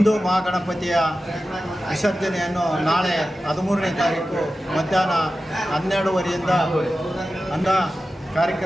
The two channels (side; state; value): both; normal; correlation 0.94